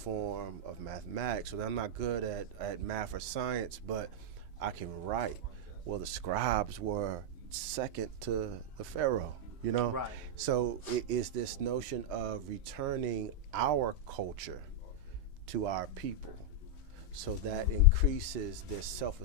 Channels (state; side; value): normal; both; correlation -0.03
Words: of mathematics. So I'm not good at math or science, but I can write. Well, the scribes were second to the pharaoh, Right. So it is this notion of returning our culture to our people, so that increases their